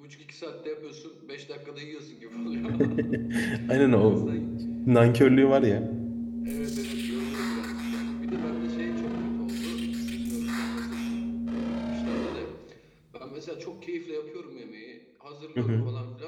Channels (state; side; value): identical; both; correlation 1.00